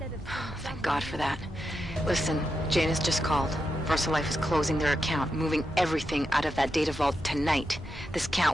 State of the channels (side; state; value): both; normal; correlation 0.86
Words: Thank God for that. Listen, Janus just called. VersaLife is closing their account, moving everything out of that data vault tonight. This